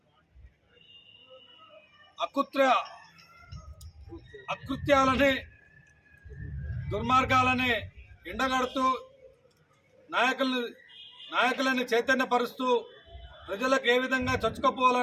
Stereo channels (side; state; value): both; identical; correlation 1.00